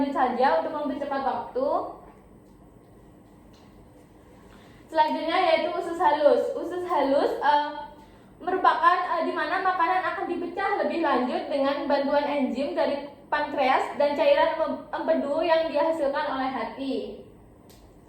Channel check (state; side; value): identical; both; correlation 1.00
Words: saja untuk mempercepat waktu. Selanjutnya yaitu usus halus. Usus halus merupakan di mana makanan akan dipecah lebih lanjut dengan bantuan enzim dari pankreas dan cairan empedu yang dihasilkan oleh hati.